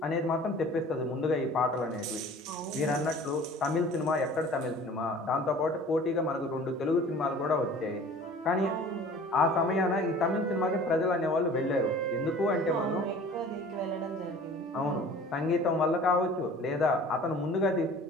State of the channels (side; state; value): both; normal; correlation 0.46